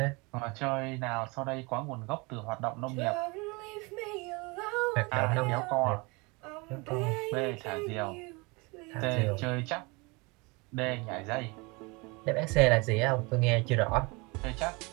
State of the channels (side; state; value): left; quieter; 27.3 dB